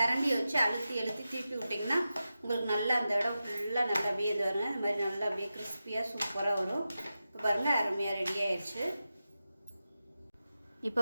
வச்சு அழுத்தி திருப்பி விட்டிங்கன்னா உங்களுக்கு நல்லா அந்த இடம் ஃபுல்லாக நல்லா அப்படியே இது வருங்க. இந்த மாதிரி நல்லா அப்படியே கிறிஸ்பியாக சூப்பராக வரும். இப்போ பாருங்கள், அருமையாக ரெடி ஆயிடுச்சு. இப்போ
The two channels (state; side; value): inverted; both; correlation -0.92